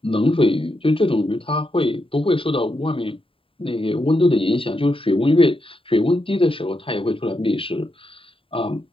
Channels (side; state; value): right; late; 0.26 ms